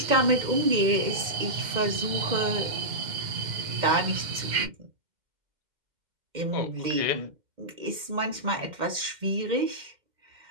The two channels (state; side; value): late; left; 2.1 ms